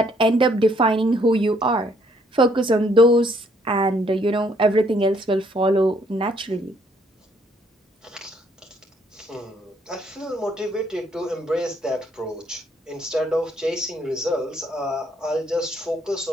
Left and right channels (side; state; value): both; normal; correlation 0.67